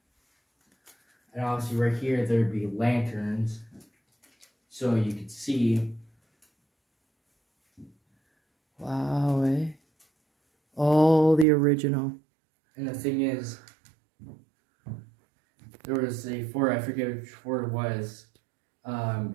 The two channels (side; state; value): left; drops out; at 11.5 s